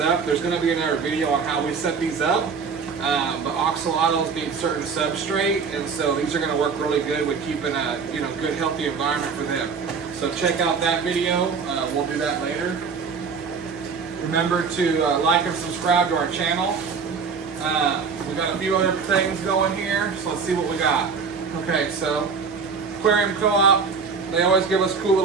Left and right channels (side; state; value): left; quieter; 5.5 dB